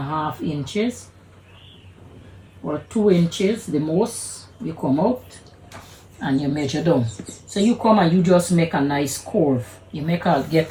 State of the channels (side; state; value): both; identical; correlation 1.00